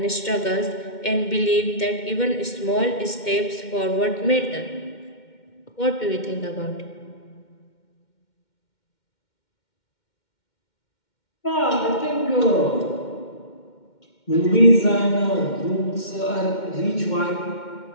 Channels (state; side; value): late; right; 2.1 ms